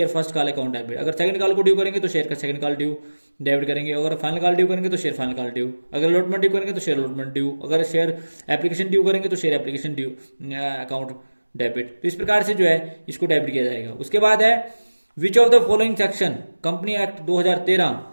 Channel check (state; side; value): inverted; both; correlation -1.00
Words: first call account debit. अगर सेकंड कॉल को ड्यू करेंगे तो शेयर का सेकंड कॉल ड्यू डेबिट करेंगे, अगर फाइनल कॉल ड्यू करेंगे तो शेयर फाइनल कॉल ड्यू, अगर अलॉटमेंट ड्यू करेंगे तो शेयर अलॉटमेंट ड्यू, अगर शेयर एप्लीकेशन ड्यू करेंगे तो share application due account debit. तो इस प्रकार से जो है इसको डेबिट किया जाएगा। उसके बाद है विच of the following section company act 2013